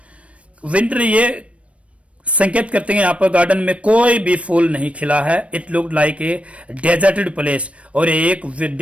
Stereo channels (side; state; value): left; late; 0.063 ms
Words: winter ये संकेत करते हैं यहाँ पर गार्डन में कोई भी फूल नहीं खिला है। It look like a deserted place, और एक